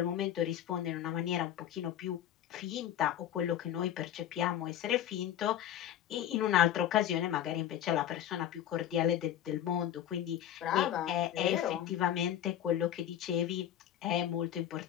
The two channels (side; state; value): right; quieter; 10.9 dB